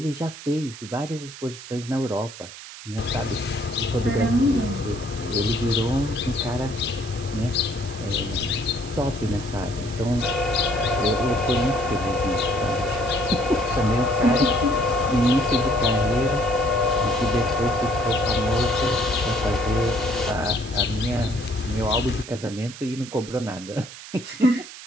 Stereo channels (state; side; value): noise; right; hiss, 14 dB below the sound